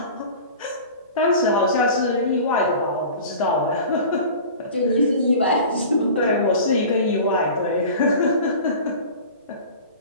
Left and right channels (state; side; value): inverted; both; correlation -0.38